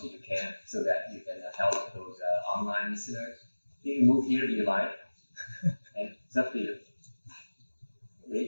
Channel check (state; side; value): inverted; both; correlation -1.00